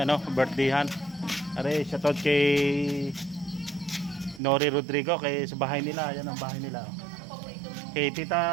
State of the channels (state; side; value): drops out; left; at 4.4 s